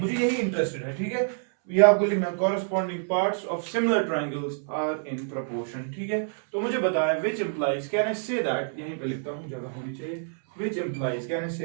मुझे यही इंटरेस्टेड है. ठीक है. ये आपको लिखना corresponding parts of similar triangles are in proportion. ठीक है. तो मुझे बताया which implies, can I say that, यहीं पे लिखता हूँ, जगह होनी चाहिए. which implies, can I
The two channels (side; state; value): left; silent; 60 dB below the other